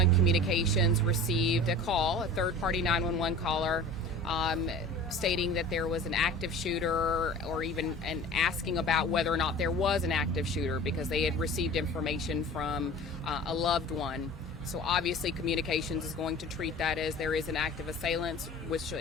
communications received a call, a third-party 911 caller, stating that there was an active shooter, or even asking about whether or not there was an active shooter, because they had received information from a loved one. So obviously communications is going to treat that as there is an active assailant,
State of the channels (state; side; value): normal; both; correlation 0.40